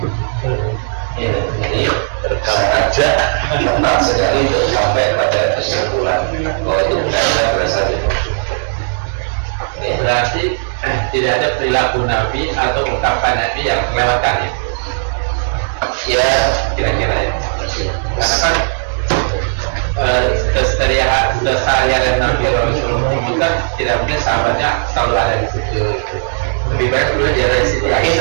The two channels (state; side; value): silent; left; digital silence